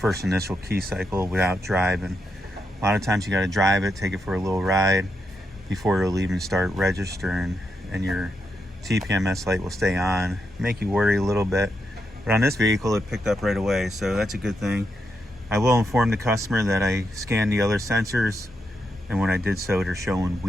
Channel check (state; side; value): normal; both; correlation 0.83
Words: initial key cycle without driving. A lot of times you got to drive it, take it for a little ride before it'll even start registering, and your TPMS light will stay on, make you worry a little bit. But on this vehicle, it picked up right away, so that's a good thing. I will inform the customer that I scanned the other sensors, and when I did so, they're showing